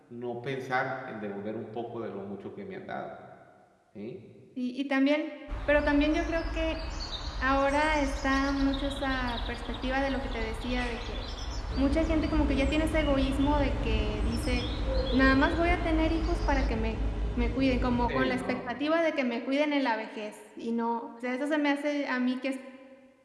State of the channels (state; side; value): identical; both; correlation 1.00